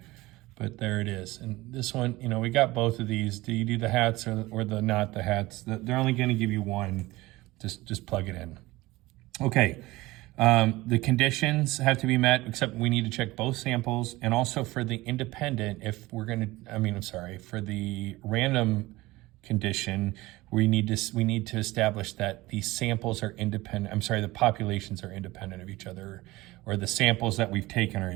but there it is. And this one, you know, we got both of these. Do you do the hats or the not the hats? They're only going to give you one. Just plug it in. Okay. The conditions have to be met, except we need to check both samples. And also for the independent, if we're going to, for the random condition, we need to establish that the samples are independent. The populations are independent of each other, or the samples that we've taken are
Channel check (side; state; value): left; quieter; 19.5 dB